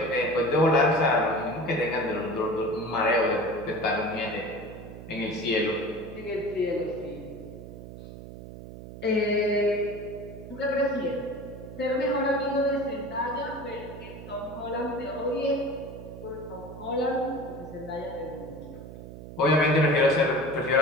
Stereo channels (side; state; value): right; noise; hum, 13 dB below the sound